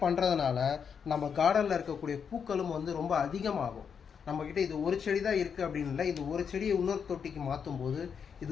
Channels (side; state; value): right; quieter; 6.9 dB